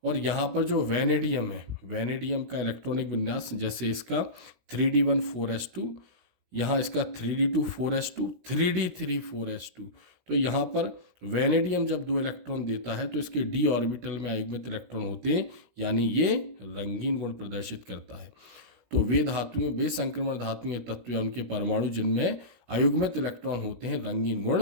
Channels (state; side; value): late; left; 16 ms